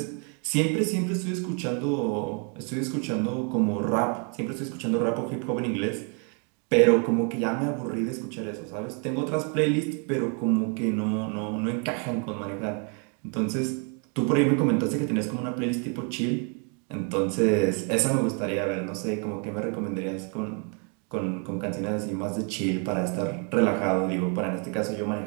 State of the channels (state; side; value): quieter; left; 38.5 dB